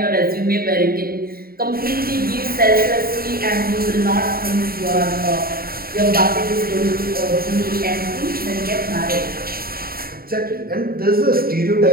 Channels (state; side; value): late; left; 0.43 ms